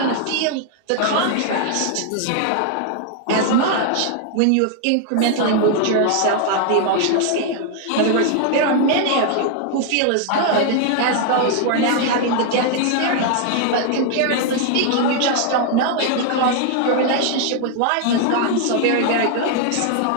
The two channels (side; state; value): both; different; correlation 0.00